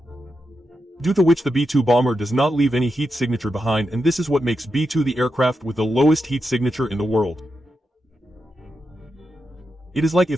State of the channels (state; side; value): normal; both; correlation 0.87